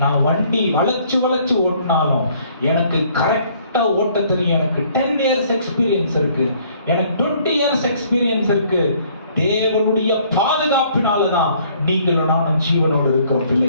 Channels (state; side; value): inverted; both; correlation -0.61